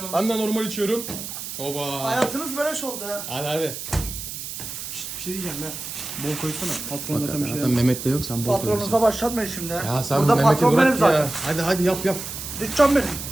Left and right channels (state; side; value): noise; right; hiss, 8 dB below the sound